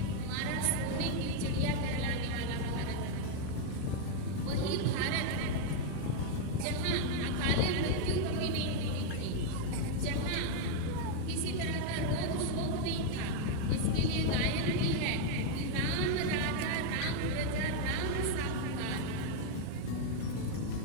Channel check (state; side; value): different; both; correlation 0.00